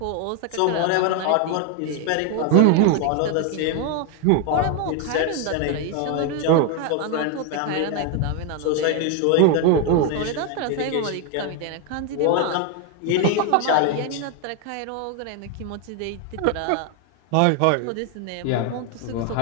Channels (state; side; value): different; both; correlation 0.01